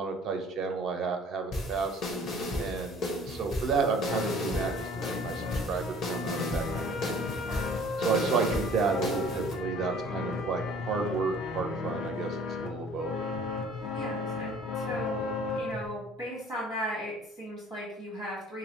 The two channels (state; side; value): normal; both; correlation 0.51